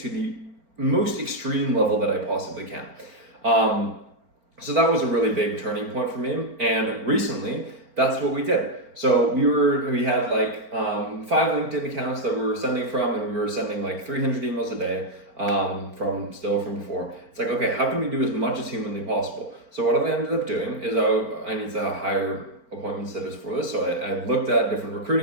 the most extreme level that I possibly can. So that was a really big turning point for me. And recently, that's what we did. So we had 5 LinkedIn accounts that we were sending from, and we were sending 300 emails a day from before. It's like, okay, how can we do as much as humanly possible? So what I ended up doing is I need to hire appointment setters for this. So I looked at different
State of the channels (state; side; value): late; left; 4.4 ms